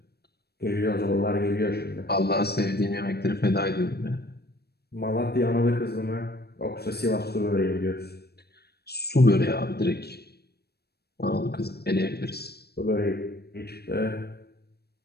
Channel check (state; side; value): late; right; 0.47 ms